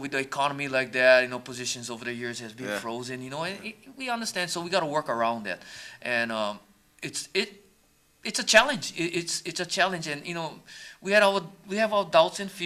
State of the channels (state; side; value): identical; both; correlation 1.00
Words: the economy like that, positions over the years has been Yeah. frozen. And we understand, so we got to work around that, and it's a challenge. It's a challenge, and we have our doubts and